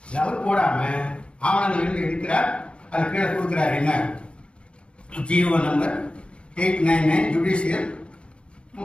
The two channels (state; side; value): late; right; 0.057 ms